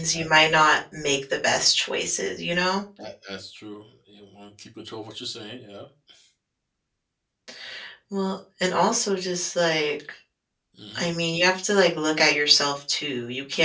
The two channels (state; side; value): identical; both; correlation 1.00